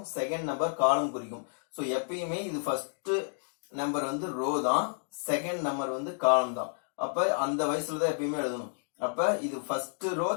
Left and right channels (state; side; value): silent; right; 57 dB below the other